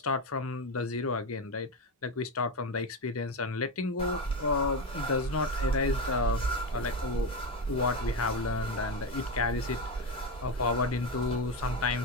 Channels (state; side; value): normal; both; correlation 0.14